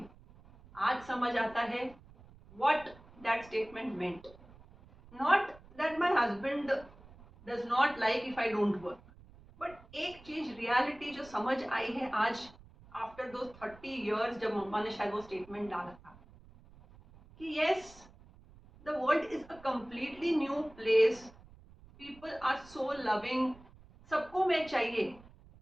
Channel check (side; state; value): right; noise; rumble, 22 dB below the sound